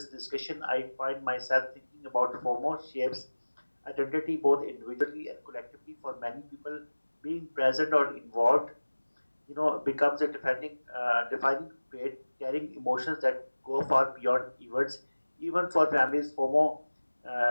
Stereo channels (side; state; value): both; inverted; correlation -1.00